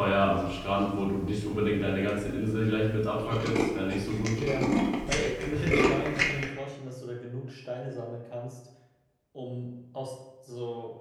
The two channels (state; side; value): identical; both; correlation 1.00